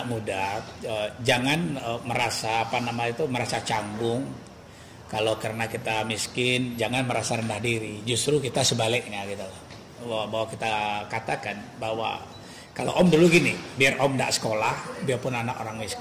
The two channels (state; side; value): identical; both; correlation 1.00